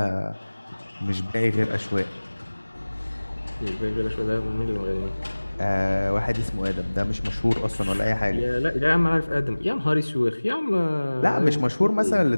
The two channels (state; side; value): inverted; both; correlation -1.00